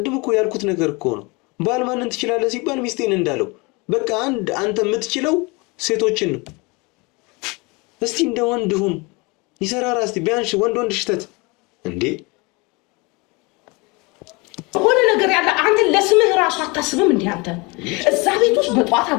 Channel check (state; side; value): quieter; right; 27.0 dB